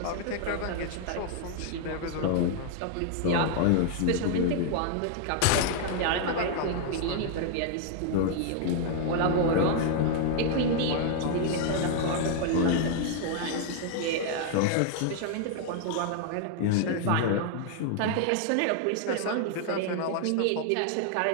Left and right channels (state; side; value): different; both; correlation 0.00